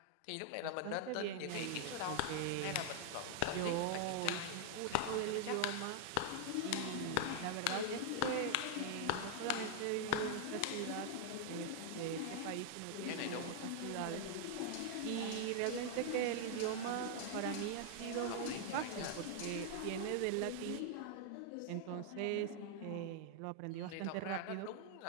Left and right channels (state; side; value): different; both; correlation 0.00